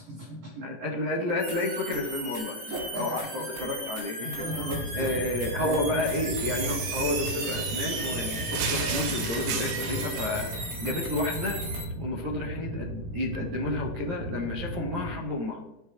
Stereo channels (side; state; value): left; late; 18 ms